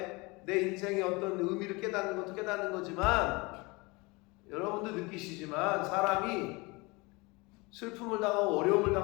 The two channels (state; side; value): quieter; right; 25.4 dB